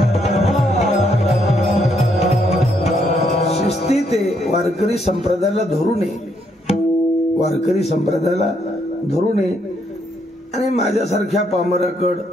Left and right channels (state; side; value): normal; both; correlation 0.73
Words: शिस्ती ते वारकरी संप्रदायाला धरून ये, वारकरी संप्रदायाला धरून ये. आणि माझ्यासारख्या पामराकड